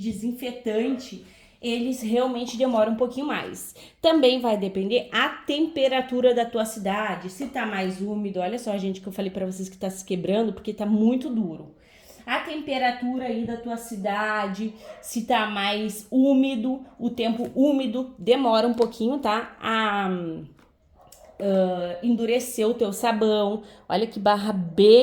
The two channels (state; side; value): identical; both; correlation 1.00